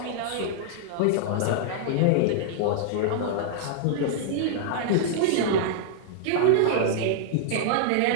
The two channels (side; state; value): both; different; correlation -0.01